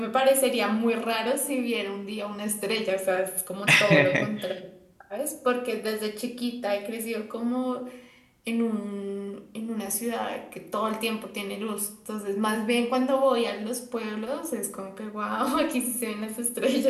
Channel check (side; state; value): both; identical; correlation 1.00